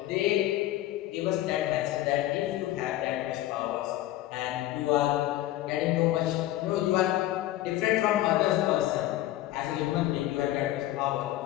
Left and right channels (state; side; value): quieter; right; 14.8 dB